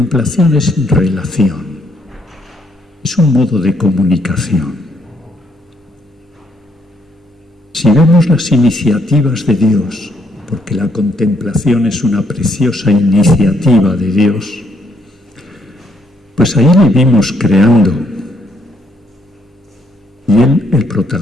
es relación, es un modo de comunicación. Si vemos las iniciativas de Dios, porque la contemplación es una preciosa iniciativa de Dios, pues ahí le vimos creando, y Él el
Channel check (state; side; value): normal; both; correlation 0.72